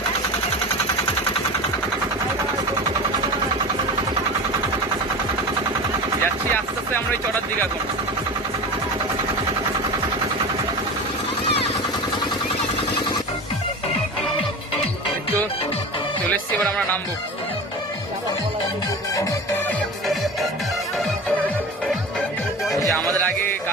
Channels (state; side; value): normal; both; correlation 0.31